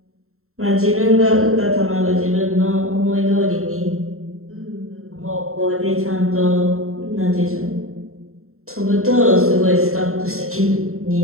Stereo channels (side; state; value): left; late; 0.62 ms